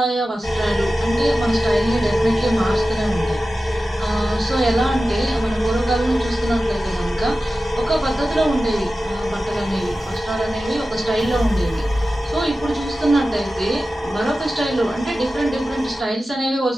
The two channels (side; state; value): both; normal; correlation 0.94